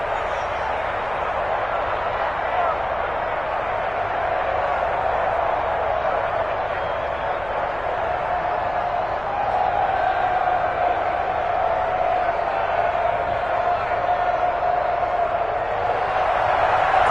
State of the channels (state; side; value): noise; left; hum, 18 dB below the sound